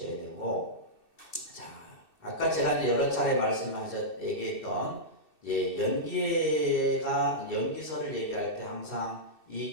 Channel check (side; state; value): right; late; 2.7 ms